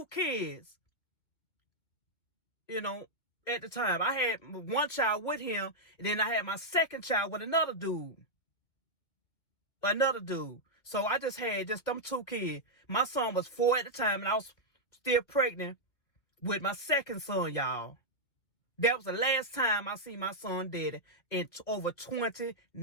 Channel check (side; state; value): right; late; 2.3 ms